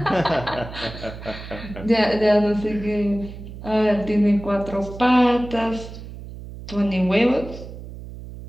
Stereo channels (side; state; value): right; noise; hum, 13 dB below the sound